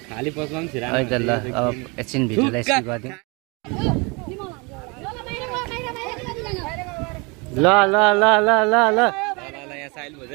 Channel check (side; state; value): left; quieter; 29.1 dB